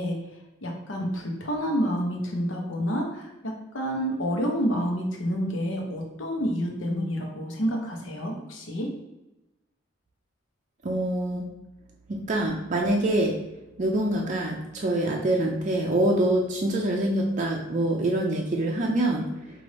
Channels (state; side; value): normal; both; correlation 0.58